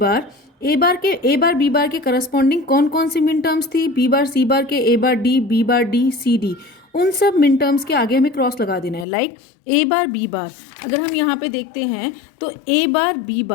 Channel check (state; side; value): drops out; right; at 9.1 s